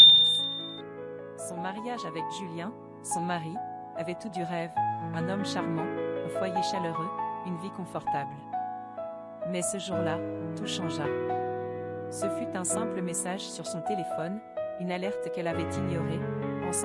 Son mariage avec Julien, son mari, avait tout du rêve, un homme charmant, un foyer chaleureux, une vie confortable. Mais ce jour-là, tout changea. Ce fut un simple message sur son téléphone, une alerte qu'elle avait ignorée,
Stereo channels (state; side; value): identical; both; correlation 1.00